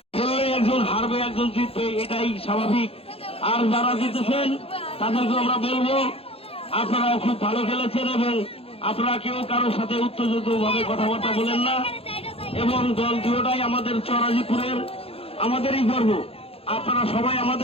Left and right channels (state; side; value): late; right; 0.28 ms